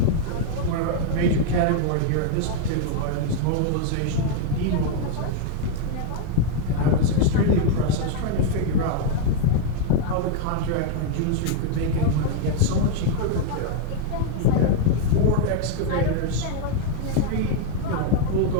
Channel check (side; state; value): both; different; correlation 0.00